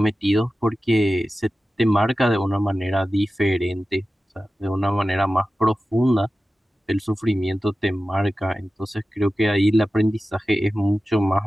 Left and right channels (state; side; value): normal; both; correlation 0.94